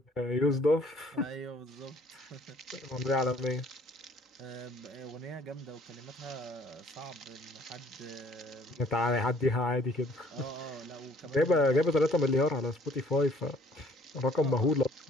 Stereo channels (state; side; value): normal; both; correlation 0.58